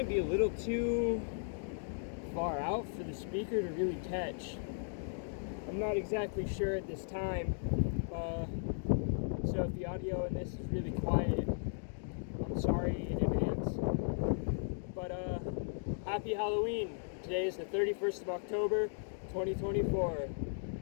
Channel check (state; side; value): silent; right; digital silence